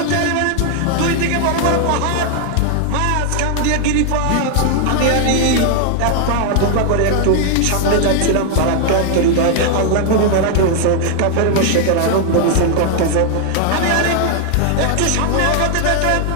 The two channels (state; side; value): different; both; correlation 0.00